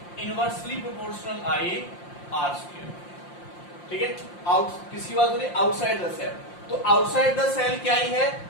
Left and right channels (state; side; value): late; right; 5.7 ms